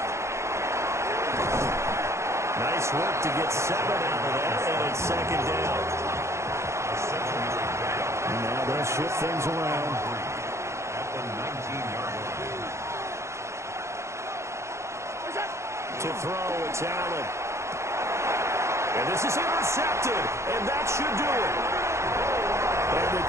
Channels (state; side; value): late; left; 0.14 ms